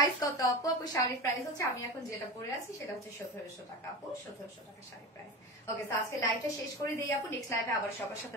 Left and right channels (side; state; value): both; normal; correlation 0.27